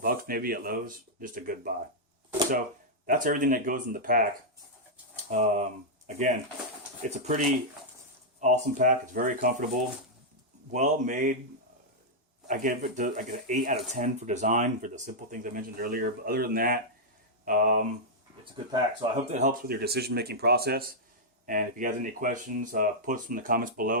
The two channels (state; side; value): normal; both; correlation -0.06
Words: maybe at Lowe's, just a good buy. So that's everything that goes in the pack. Again, it's a pretty awesome pack. It's very comfortable, well made. I give it an 8 out of 10 for design, for the simple things I mentioned earlier. But other than that, it's a good pack. So I hope that helps with your decision-making process. And if you guys have any questions, post them in the comments